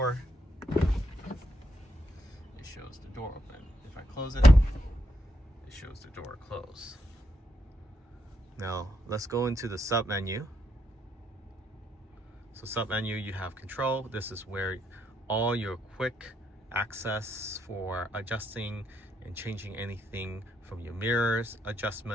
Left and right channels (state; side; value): normal; both; correlation 0.78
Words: it shows the door open. If I close it, it shows the door closed. Now let's go into the sub menu. So sub menu, you have control. This is where all your quick access for adjusting and changing anything from your mirrors